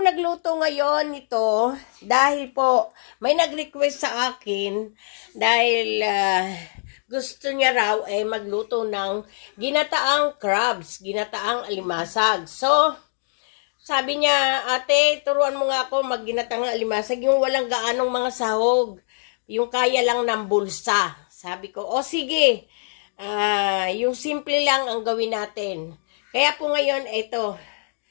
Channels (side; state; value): right; silent; digital silence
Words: nagluto ngayon nito dahil po may nag-request sa akin dahil gusto niya raw magluto ng ginataang crabs, ginataang alimasag. So, sabi niya, ate, turuan mo nga ako magginatang alimasag, yung walang gaanong mga sahog, yung kaya lang ng bulsa. Sabi ko, o sige, yung simple lang ang gawin natin. Kaya po ngayon, ito,